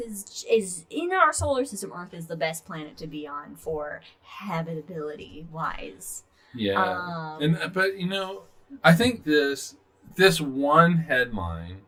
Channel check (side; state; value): both; identical; correlation 1.00